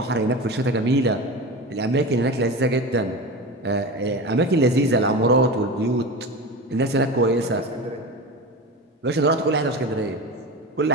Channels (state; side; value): normal; both; correlation 0.27